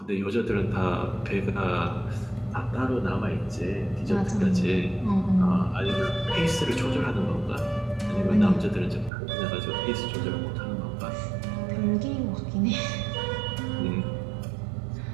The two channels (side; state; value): left; drops out; at 9.1 s